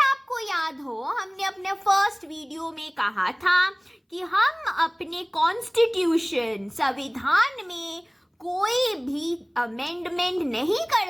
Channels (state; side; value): identical; both; correlation 1.00